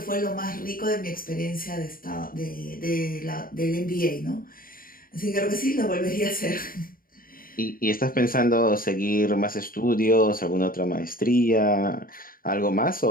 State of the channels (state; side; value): late; right; 0.41 ms